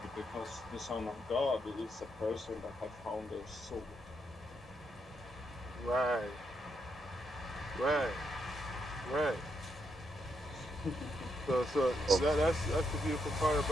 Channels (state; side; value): normal; both; correlation 0.79